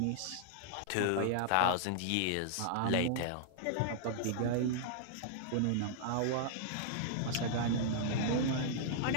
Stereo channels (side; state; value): both; different; correlation -0.01